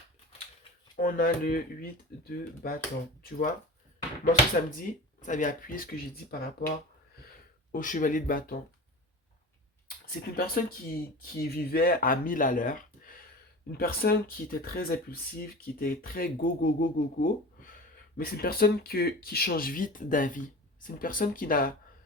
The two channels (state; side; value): normal; both; correlation 0.34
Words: On a le 8 de bâton. Tu vois? Moi, ce que ça me dit, ça vient appuyer ce que j'ai dit par rapport au chevalier de bâton. C'est une personne qui vivait à 1000 à l'heure. Une personne qui était très impulsive, qui était très go, go, go, go, go. Mais c'est une personne qui change vite d'avis. C'est une personne qui n'a